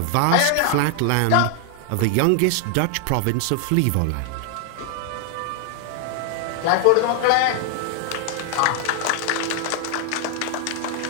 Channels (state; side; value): different; both; correlation 0.00